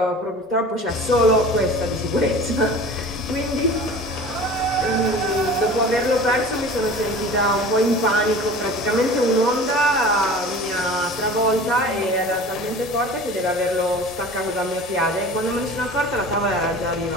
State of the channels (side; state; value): both; normal; correlation 0.40